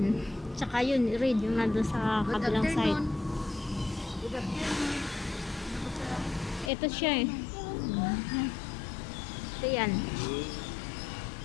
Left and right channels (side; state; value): right; drops out; at 6.7 s